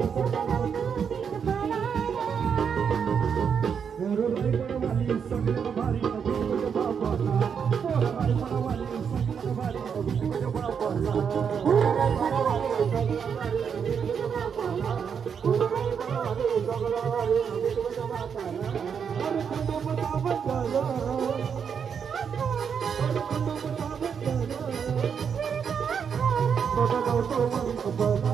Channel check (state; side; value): quieter; left; 7.0 dB